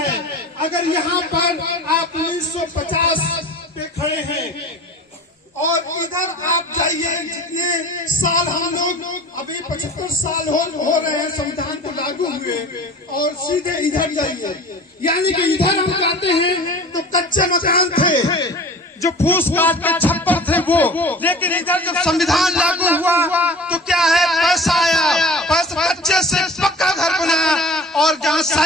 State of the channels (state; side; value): normal; both; correlation 0.40